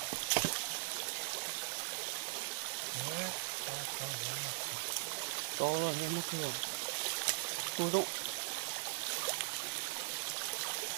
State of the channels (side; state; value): left; silent; digital silence